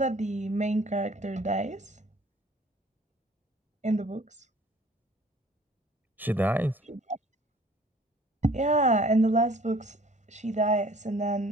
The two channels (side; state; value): both; normal; correlation 0.53